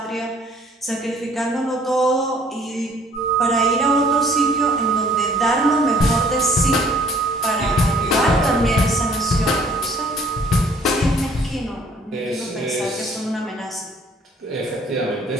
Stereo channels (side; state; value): both; normal; correlation 0.58